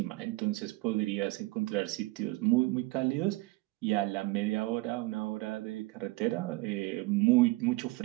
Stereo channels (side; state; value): left; quieter; 21.6 dB